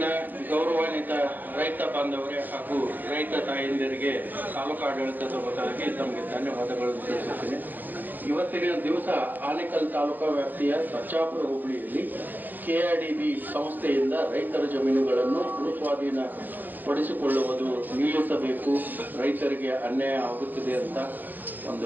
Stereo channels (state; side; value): late; left; 0.087 ms